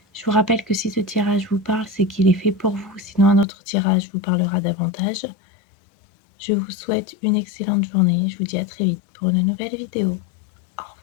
Je vous rappelle que si ce tirage vous parle, c'est qu'il est fait pour vous. Sinon, un autre tirage vous parlera davantage. Je vous souhaite une excellente journée. Je vous dis à très vite pour une nouvelle vidéo.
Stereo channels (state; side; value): drops out; right; at 3.5 s